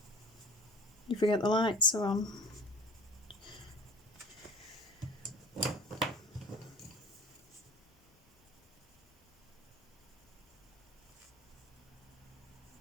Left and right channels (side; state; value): both; normal; correlation 0.42